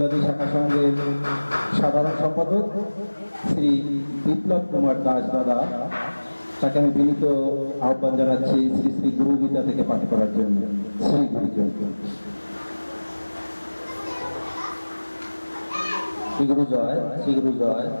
শাখা সংঘের সাধারণ সম্পাদক শ্রী বিপ্লব কুমার দাস দাদা। তাকে আমি বিনীত আহ্বান জানাচ্ছি শ্রী শ্রী গুরু গীতা থেকে পাঠ করার জন্য। শ্রী গুরু শ্রী গুরু জয়, শ্রী গুরু জয়,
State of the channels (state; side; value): inverted; both; correlation -1.00